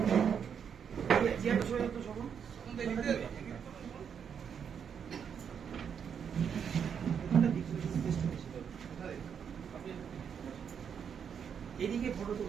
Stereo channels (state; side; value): quieter; left; 7.5 dB